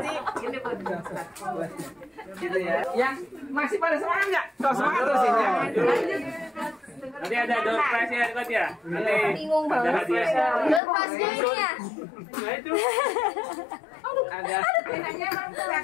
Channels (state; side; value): drops out; right; at 10.8 s